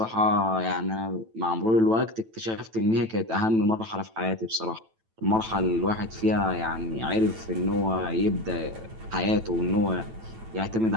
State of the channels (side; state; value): left; late; 9.1 ms